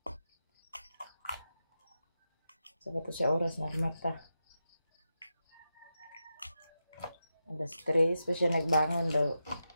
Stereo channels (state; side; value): inverted; both; correlation -0.88